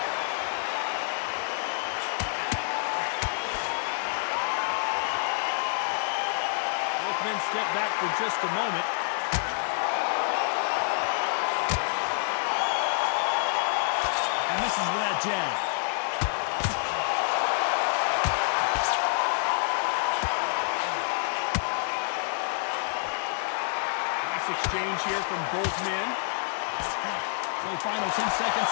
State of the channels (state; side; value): silent; right; 59 dB below the other